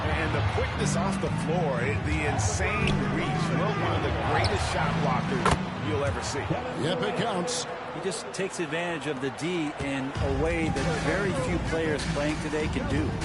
And the quickness off the floor, the insane reach. Well, one of the greatest shot blockers you'll ever see. Yep, it counts. He just takes advantage of the D in a way that very few players playing today can do.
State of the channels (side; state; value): both; identical; correlation 1.00